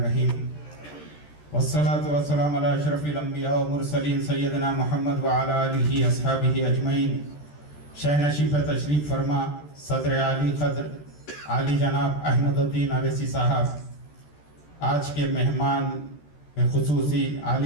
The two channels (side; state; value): right; late; 13 ms